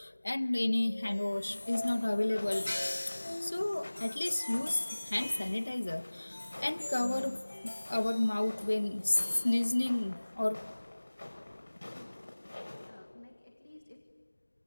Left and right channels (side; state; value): both; inverted; correlation -1.00